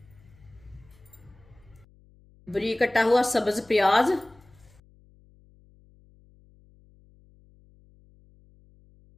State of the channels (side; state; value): left; noise; hum, 28 dB below the sound